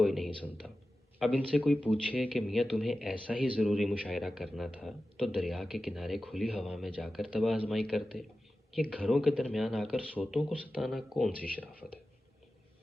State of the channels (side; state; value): both; normal; correlation 0.94